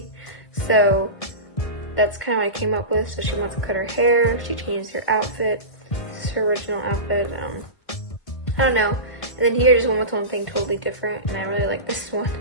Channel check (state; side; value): late; right; 1.5 ms